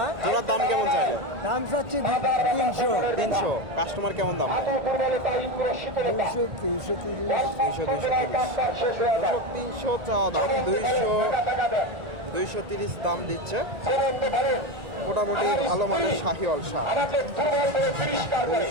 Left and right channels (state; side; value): late; left; 1.9 ms